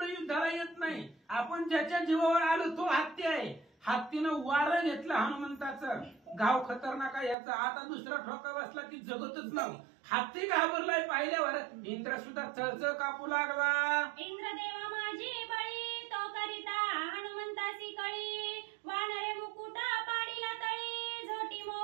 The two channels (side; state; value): left; drops out; at 7.4 s